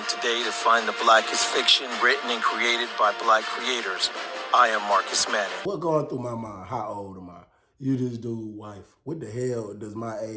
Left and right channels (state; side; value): identical; both; correlation 1.00